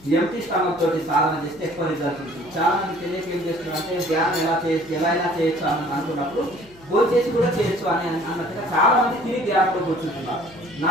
ఎంటీ స్టమక్ తోటి సాధన చేస్తే ఎక్కువ రిజల్ట్ ఉంటుంది. చాలా మంది తెలియక ఏం చేస్తున్నారు అంటే ధ్యానం ఎలా చేయొచ్చు అని అనుకున్నప్పుడు భోజనం చేసి కూడా చేయొచ్చు అని అన్నట్టుగా చాలా మంది తిరిగి ధ్యానంలో కూర్చుంటున్నారు.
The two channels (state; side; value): noise; left; hum, 24 dB below the sound